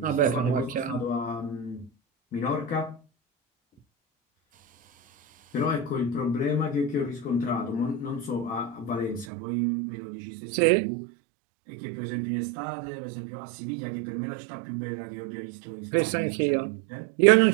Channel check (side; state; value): left; drops out; at 9.2 s